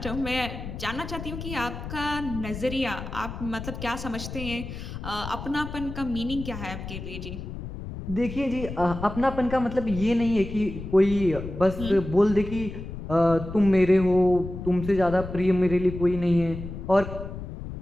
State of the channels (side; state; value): left; noise; rumble, 9 dB below the sound